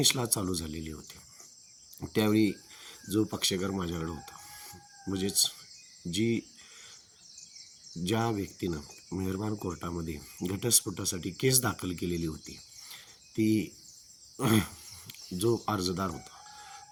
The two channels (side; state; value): both; identical; correlation 1.00